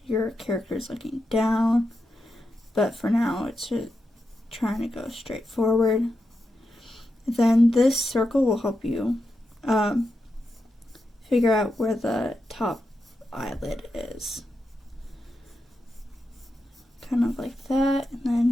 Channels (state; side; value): normal; both; correlation 0.87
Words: your character is looking down, but for now it's just trying to go straight forward. Then this circle will help you figure out where the top eyelid is. Kind of like that, and